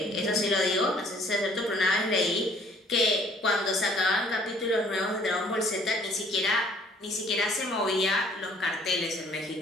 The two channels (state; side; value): normal; both; correlation 0.58